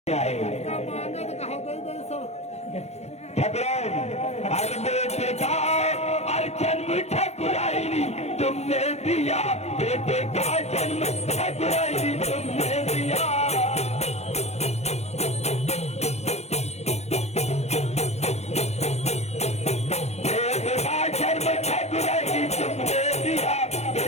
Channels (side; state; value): right; late; 0.31 ms